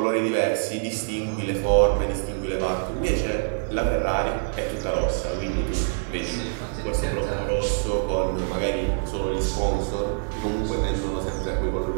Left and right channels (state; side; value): silent; left; digital silence